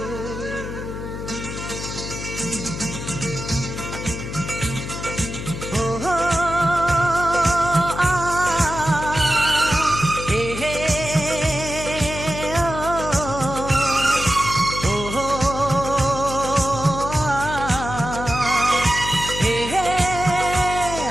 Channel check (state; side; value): noise; left; hum, 7 dB below the sound